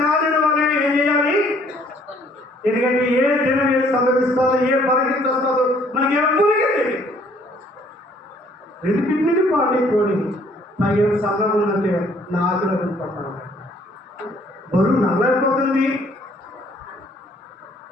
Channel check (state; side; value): normal; both; correlation 0.61